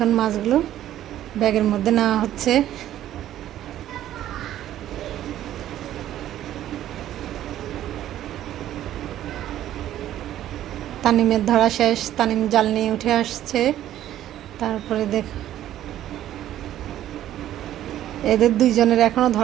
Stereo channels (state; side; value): quieter; left; 12.4 dB